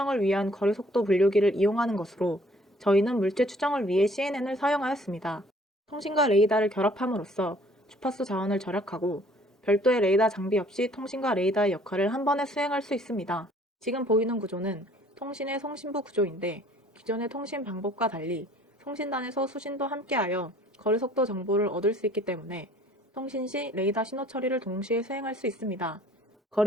위한 거리 속도 분류기를 이용하는 것으로 저희는 물체 추정을 위해 CNN을 사용하였습니다. 통신과 레이더를 결합함으로써 주파수 자원을 절약하고 별도의 레이더 장비 없이 통신과 레이더의 역할을 한 번에 수행할 수 있습니다. 지금 보이는 구조는 통신의 송신부 구조인데 기존의 통신 방법과 달리 통신단에서 수신도 함께하여 거리 속도 정보를 얻을 수 있기 때문에 통신 시 레이더 신호 처리를 동시에 수행할 수 있습니다.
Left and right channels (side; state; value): both; normal; correlation 0.57